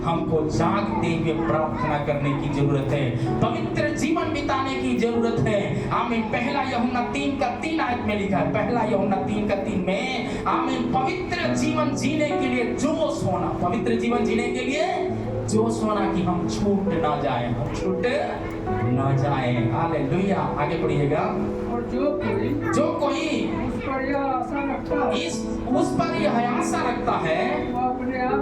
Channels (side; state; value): both; identical; correlation 1.00